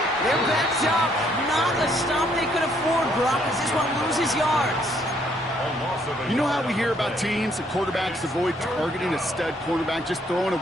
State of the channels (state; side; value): normal; both; correlation 0.67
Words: They're backed up. Not a stop they could afford, Brock, as this one loses yards. You know how we hear about teams and quarterbacks avoid targeting a stud quarterback, just throwing